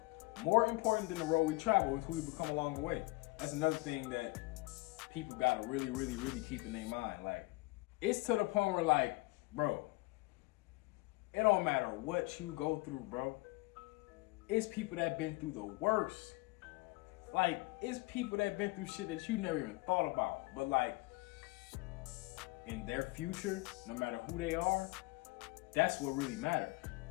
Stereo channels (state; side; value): quieter; right; 23.0 dB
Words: More important than the road we travel is who we become along the way. That's another thing that people gotta really, really, really keep in their mind. Like, it's to the point where, like, bro, it don't matter what you go through, bro. It's people that been through the worst. Like, it's people that been through shit that you never even thought about. But, like, in their future, no matter who they are, that's what really matters.